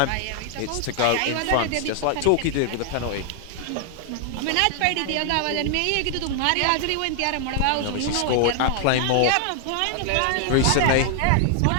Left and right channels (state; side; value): different; both; correlation 0.00